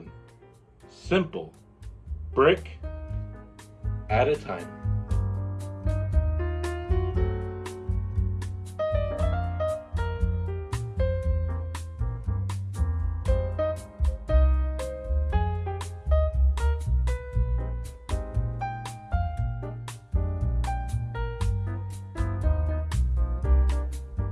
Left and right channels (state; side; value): identical; both; correlation 1.00